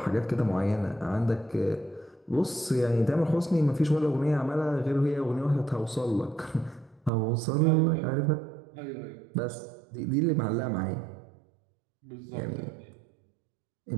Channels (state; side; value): drops out; left; at 7.1 s